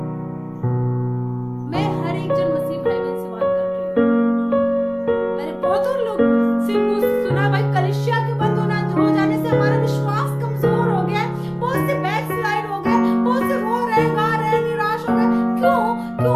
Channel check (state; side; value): identical; both; correlation 1.00